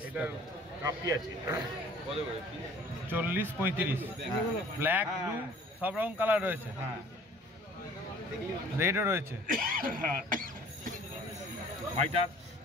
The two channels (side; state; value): both; normal; correlation 0.51